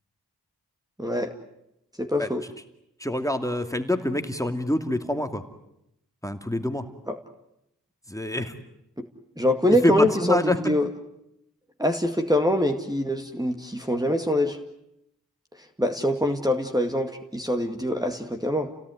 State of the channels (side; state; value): both; normal; correlation 0.73